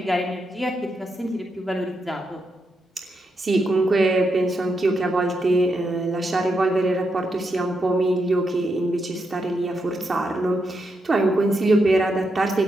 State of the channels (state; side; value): normal; both; correlation 0.83